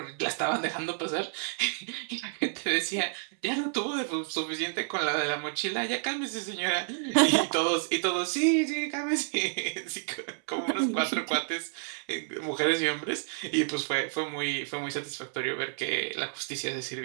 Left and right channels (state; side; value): silent; left; 58 dB below the other